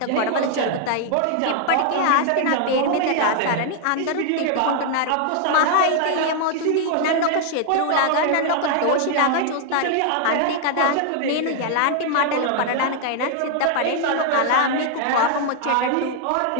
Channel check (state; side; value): different; both; correlation 0.00